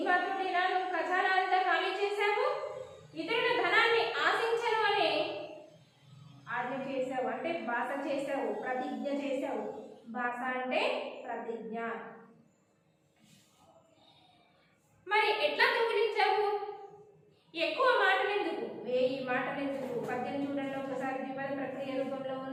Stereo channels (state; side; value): identical; both; correlation 1.00